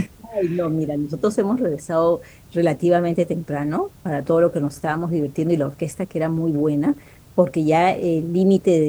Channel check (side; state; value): both; identical; correlation 1.00